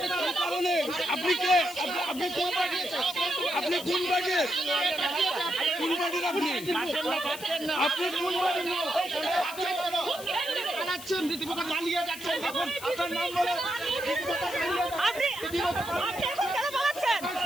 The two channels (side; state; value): left; noise; hiss, 13 dB below the sound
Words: আপনি কে? আপনি কোন পার্টির? আপনি কোন পার্টির? কোন পার্টির আপনি? আপনি কোন পার্টির? পালাচ্ছেন, রীতিমতো পালিয়ে যাচ্ছেন। আপনার নাম বলে আপনি এখন কেন পালাচ্ছেন?